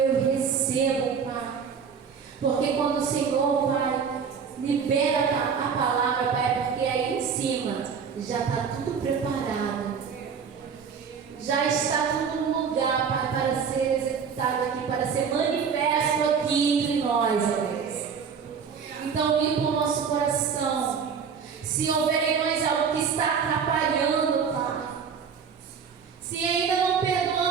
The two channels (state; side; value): quieter; left; 6.5 dB